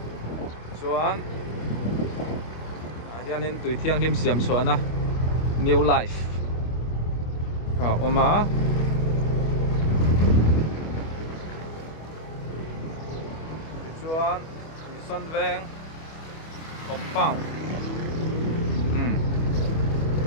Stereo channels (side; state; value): right; late; 25 ms